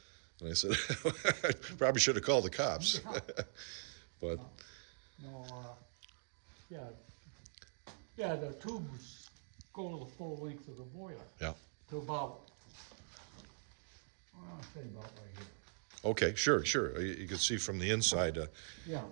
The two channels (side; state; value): left; silent; digital silence